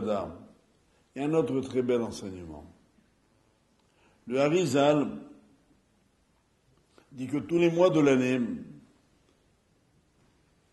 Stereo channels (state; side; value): identical; both; correlation 1.00